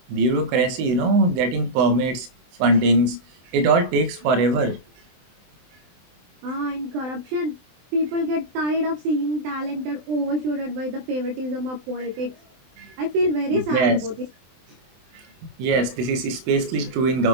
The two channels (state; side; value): late; left; 23 ms